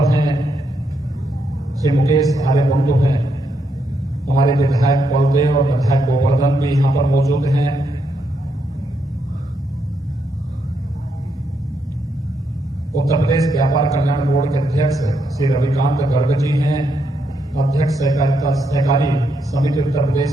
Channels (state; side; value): normal; both; correlation 0.79